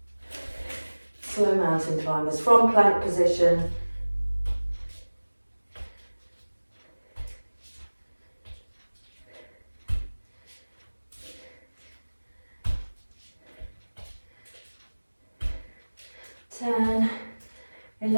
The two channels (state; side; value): inverted; both; correlation -1.00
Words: Slow mountain climbers from plank position. Ten,